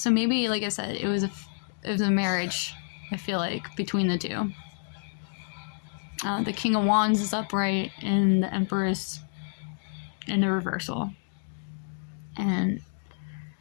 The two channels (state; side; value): silent; right; digital silence